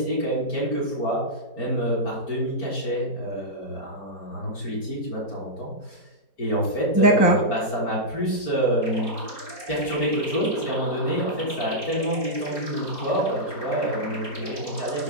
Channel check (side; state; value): right; late; 4.4 ms